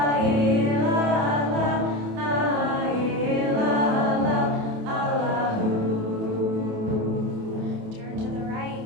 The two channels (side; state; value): left; late; 28 ms